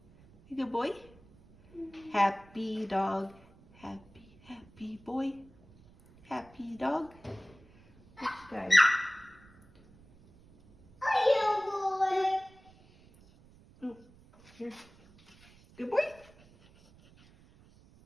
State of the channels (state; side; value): noise; right; rumble, 26 dB below the sound